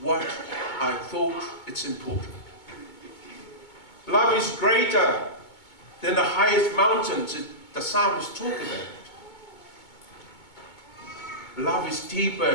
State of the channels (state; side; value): late; right; 2.2 ms